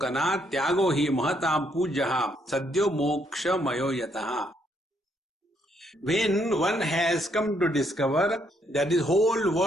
tyago hi mahatam pujaha sadyo moksha mayo yataha. When one has come to discover that this whole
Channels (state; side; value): normal; both; correlation 0.72